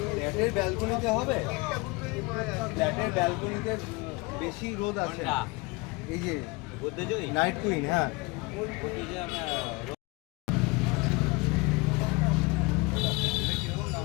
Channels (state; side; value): quieter; right; 25.5 dB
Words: ফ্ল্যাটের ব্যালকনিতে হবে, ফ্ল্যাটের ব্যালকনিতে বেশি রোদ আছে। এই যে নাইট কুইন, হ্যাঁ